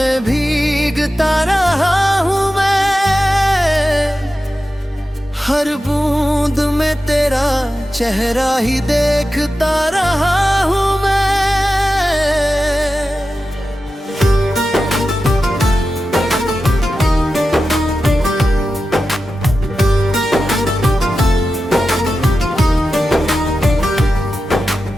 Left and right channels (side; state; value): both; normal; correlation 0.92